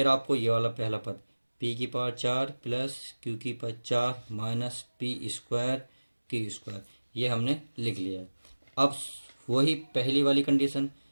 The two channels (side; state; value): both; inverted; correlation -1.00